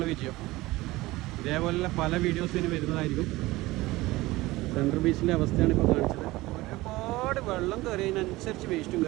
വിജയം. ഇതേപോലെ പല വീഡിയോസിന് വരുന്നതായിരിക്കും. സെൻട്രൽ ബീച്ചിൻ്റെ അവസ്ഥയാണ് ഇപ്പോൾ കാണിച്ചത്. ഒരുപാട് വെള്ളം കയറിയതിനനുസരിച്ച് വേസ്റ്റും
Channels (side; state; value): left; quieter; 19.4 dB